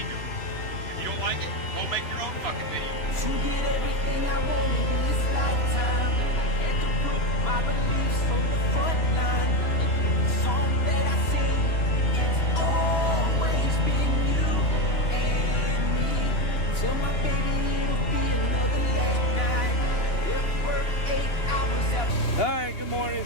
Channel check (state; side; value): late; right; 2.9 ms